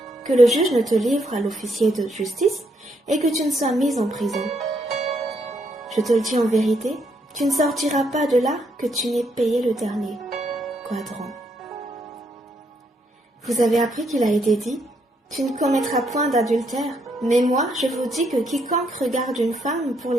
que le juge ne te livre à l'officier de justice et que tu ne sois mis en prison. Je te le dis en vérité, tu ne sortiras pas de là que tu n'aies payé le dernier quadrant. Vous avez appris qu'il a été dit, tu ne commettras point d'adultère, mais moi je vous dis que quiconque regarde une femme pour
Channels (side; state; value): both; normal; correlation 0.75